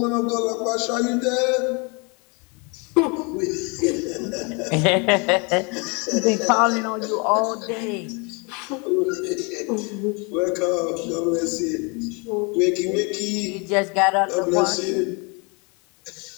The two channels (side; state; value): right; quieter; 31.9 dB